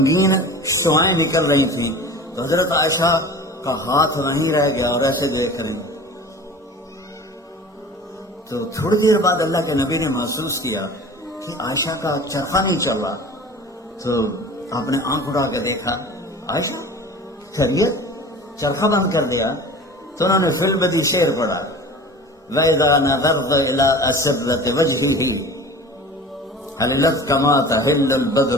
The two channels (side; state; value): both; normal; correlation 0.39